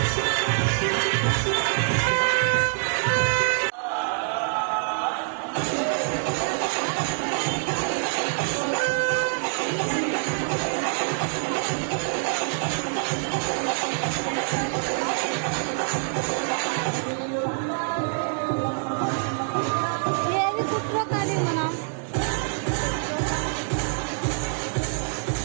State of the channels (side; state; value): left; silent; 57 dB below the other